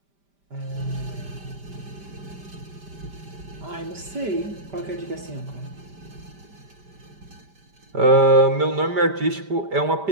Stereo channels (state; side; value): late; left; 5.1 ms